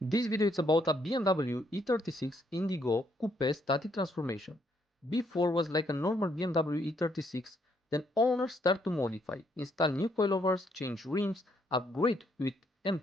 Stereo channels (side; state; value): both; normal; correlation 0.72